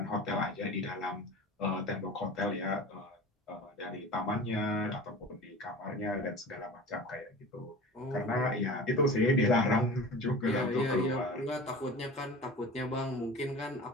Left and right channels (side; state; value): both; normal; correlation 0.36